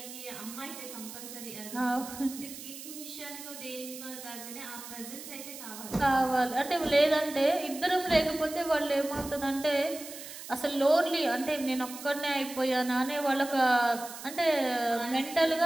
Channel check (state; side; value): noise; right; hiss, 12 dB below the sound